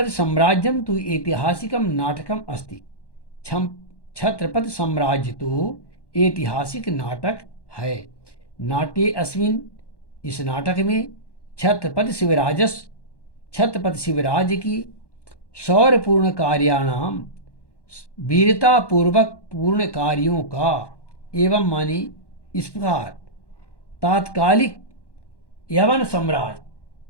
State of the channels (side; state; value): right; late; 1.1 ms